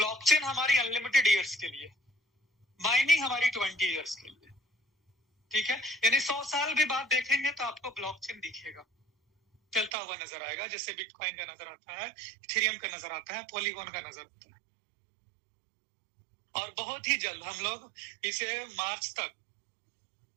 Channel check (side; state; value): left; drops out; at 9.9 s